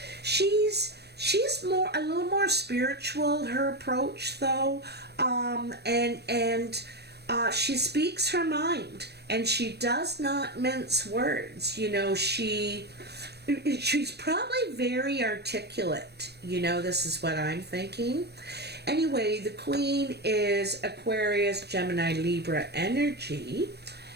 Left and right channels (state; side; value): late; left; 0.48 ms